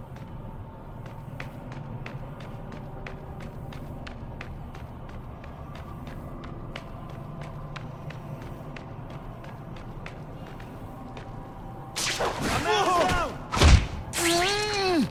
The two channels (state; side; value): identical; both; correlation 1.00